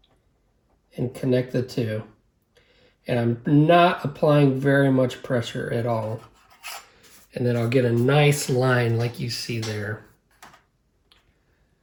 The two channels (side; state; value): both; identical; correlation 1.00